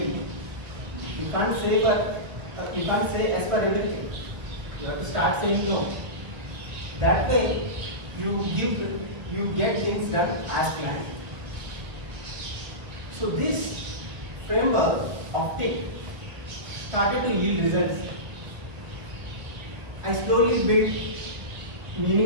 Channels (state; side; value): late; left; 1.2 ms